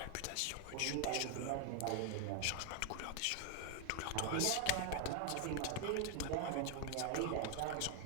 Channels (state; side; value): different; both; correlation 0.01